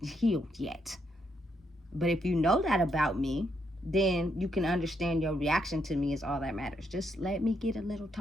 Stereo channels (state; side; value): normal; both; correlation 0.77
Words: healed yet. But if you know that about me, then you can understand your reaction to me is all that matters. Just let me get a little